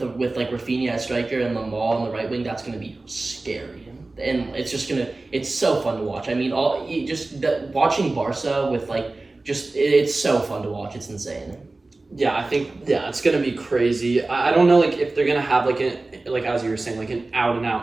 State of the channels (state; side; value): quieter; left; 3.2 dB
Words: like Rafinha as striker and Lamal on the right wing, that's gonna be scary. And it's so fun to watch. I mean, watching Barca with it's so fun to watch. It's insane. Yeah, I think it's gonna be crazy. I don't know if they're gonna have like as you were saying, like an out and